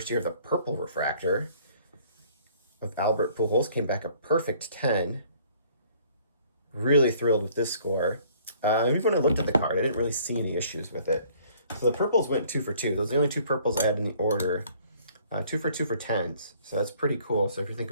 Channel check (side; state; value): both; inverted; correlation -0.58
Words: year of the purple refractor of Albert Pujols. Came back a perfect 10. Really thrilled with this score. Even when I looked at the card, I didn't really see any issues with it. So the purples went 2 for 2. Those are the only 2 purples I had in the order. 2 for 2 for 10s. So that's pretty cool. So if you think